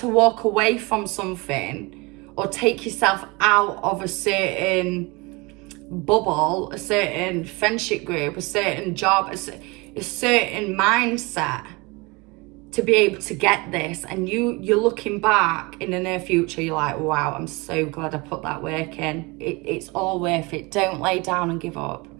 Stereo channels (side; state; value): left; quieter; 25.9 dB